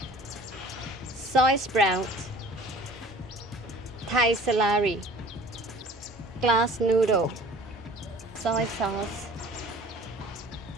soy sprout, Thai celery, glass noodle, soy sauce,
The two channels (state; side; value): normal; both; correlation 0.47